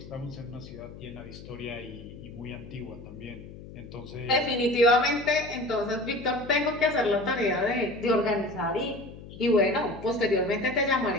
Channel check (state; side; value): noise; left; hum, 15 dB below the sound